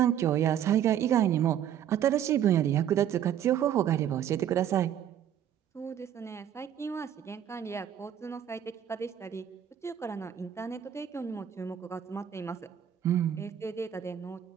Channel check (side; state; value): left; quieter; 9.9 dB